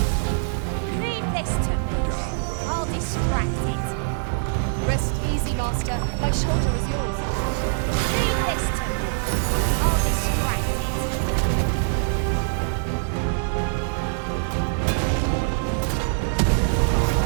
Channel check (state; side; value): silent; left; 63 dB below the other